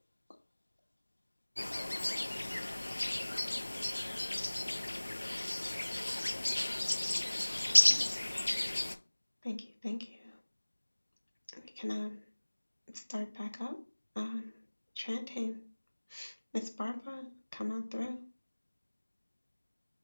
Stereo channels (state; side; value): inverted; both; correlation -1.00